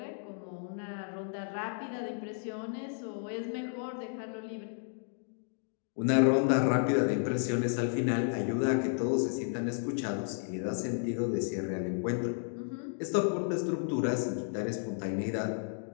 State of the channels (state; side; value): silent; right; digital silence